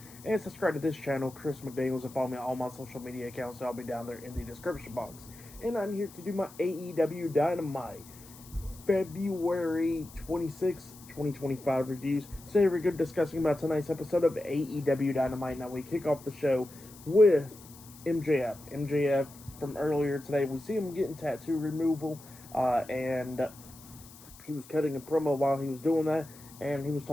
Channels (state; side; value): noise; left; hiss, 20 dB below the sound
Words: and subscribe to this channel, Chris McDaniels, and follow me on all my social media accounts. I'll be down there in the description box. And I'm here to do my AEW Dynamite February 26, 2025 reviews. So here we're going to be discussing about tonight's episode of AEW Dynamite. Now we kick off the show with MJF. MJF from earlier today, we see him getting tattoo removal, and he was cutting a promo while he was doing that, and he was